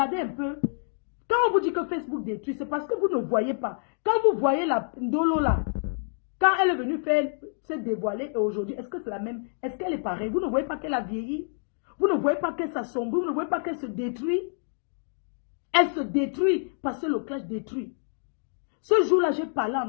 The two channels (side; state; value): right; silent; digital silence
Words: un peu. Quand on vous dit que Facebook détruit, c'est parce que vous ne voyez pas. Quand vous voyez la Ndolo là, quand elle est venue se dévoiler aujourd'hui, est-ce que c'est la même? Est-ce qu'elle est pareille? Vous ne voyez pas qu'elle a vieilli? Vous ne voyez pas qu'elle s'assombrit? Vous ne voyez pas qu'elle se détruit? Elle se détruit parce que le clash détruit. Ce jour-là, j'ai parlé à